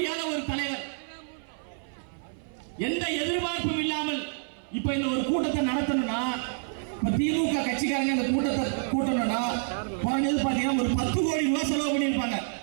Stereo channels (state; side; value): silent; left; 57 dB below the other